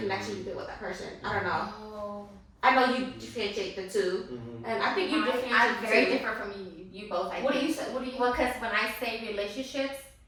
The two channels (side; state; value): both; identical; correlation 1.00